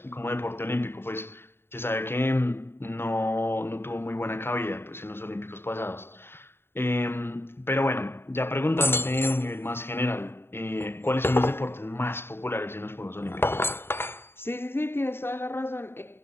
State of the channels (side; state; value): right; late; 0.11 ms